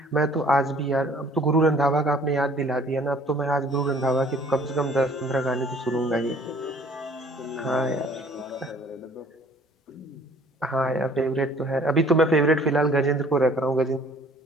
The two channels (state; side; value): normal; both; correlation 0.55